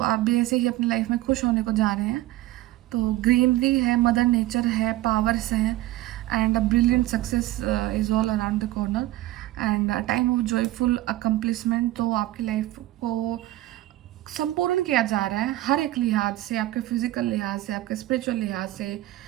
भी ऐसे ही अपनी लाइफ में खुश होने को जा रहे हैं। तो ग्रीनरी है, मदर नेचर है, पावर्स हैं, and a brilliant success is all around the corner, and time of joyful accomplishment. तो आपकी लाइफ को संपूर्ण किया जा रहा है हर एक लिहाज से, आपके फिजिकल लिहाज से, आपके स्पिरिचुअल लिहाज से,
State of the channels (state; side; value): quieter; left; 16.2 dB